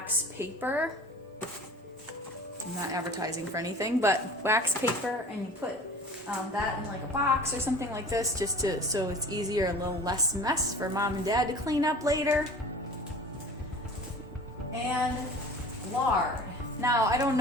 paper. I'm not advertising for anything, but wax paper, and you put that in like a box or something like this, just so it's easier, a little less mess for mom and dad to clean up later. And lard. Now, I don't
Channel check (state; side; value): normal; both; correlation 0.42